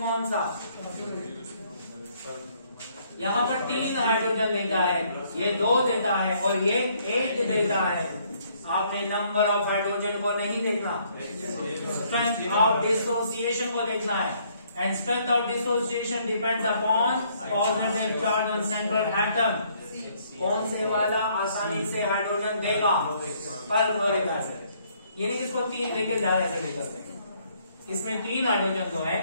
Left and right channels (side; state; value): both; inverted; correlation -0.66